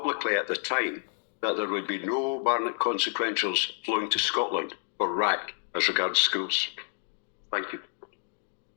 at the time that there would be no Barnett consequentials flowing to Scotland for RAC as regards schools. Thank you.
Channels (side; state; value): right; silent; 58 dB below the other